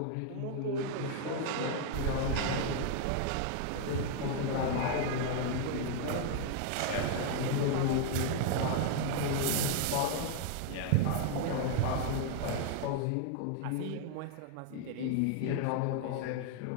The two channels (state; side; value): different; both; correlation 0.00